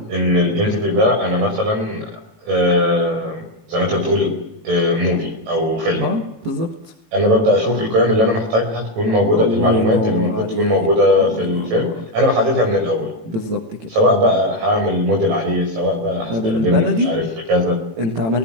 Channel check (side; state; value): left; late; 18 ms